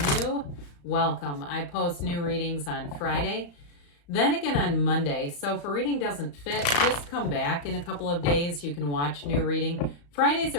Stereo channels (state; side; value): late; right; 35 ms